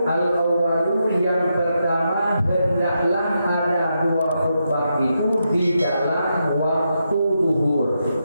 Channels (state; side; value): inverted; both; correlation -0.84